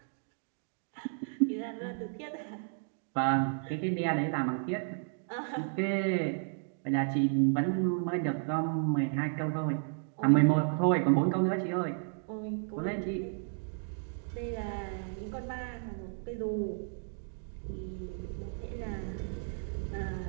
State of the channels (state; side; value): silent; left; 56 dB below the other